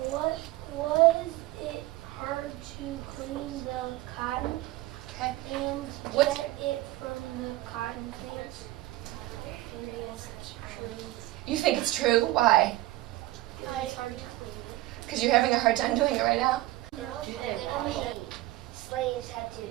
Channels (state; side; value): quieter; left; 17.5 dB